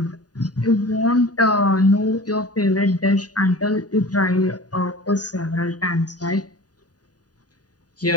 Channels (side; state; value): right; late; 0.68 ms